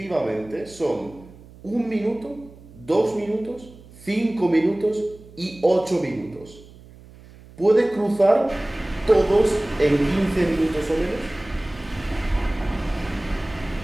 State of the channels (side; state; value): right; noise; hum, 21 dB below the sound